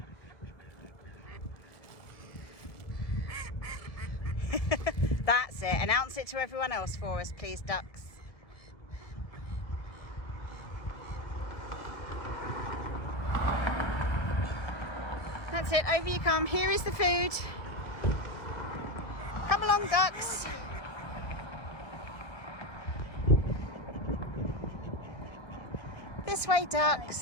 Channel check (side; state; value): right; late; 1.8 ms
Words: That's it. Announce it to everyone else for us, please, ducks. That's it. Over you come. Here is the food. Come along, ducks. This way,